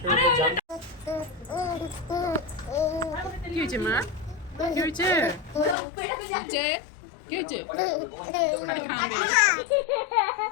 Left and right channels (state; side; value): drops out; right; at 5.8 s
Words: জান কি হয়েছে মা কি হয়েছে কি হয়েছে খালি খাবে